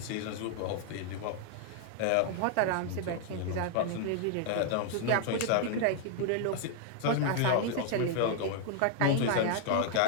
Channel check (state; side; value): different; both; correlation -0.01